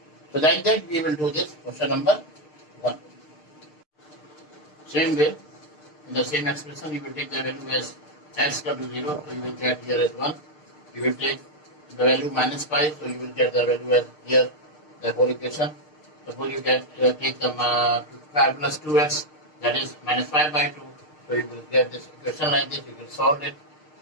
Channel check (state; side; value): late; right; 6.6 ms